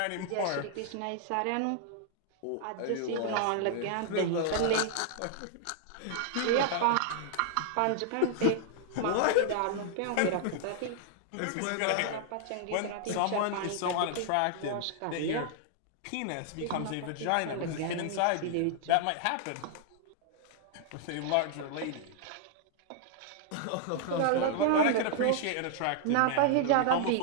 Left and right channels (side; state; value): both; different; correlation 0.00